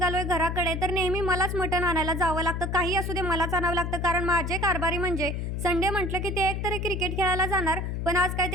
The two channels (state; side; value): noise; left; hum, 3 dB below the sound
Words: घराकडे. तर नेहमी मलाच मटण आणायला जावं लागतं, काही असू दे मलाच आणावं लागतं, कारण माझे कारभारी म्हणजे संडे म्हटलं की ते एकतरी क्रिकेट खेळायला जाणार. पण आज काय